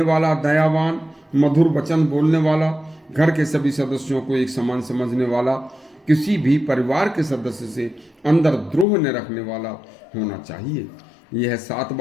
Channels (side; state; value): right; drops out; at 8.8 s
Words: वाला, दयावान, मधुर वचन बोलने वाला, घर के सभी सदस्यों को एक समान समझने वाला, किसी भी परिवार के सदस्य से अंदर द्रोह न रखने वाला होना चाहिए। यह 7